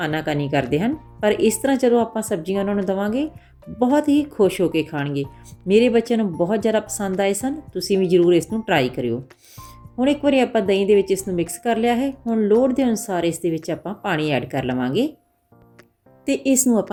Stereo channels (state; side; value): identical; both; correlation 1.00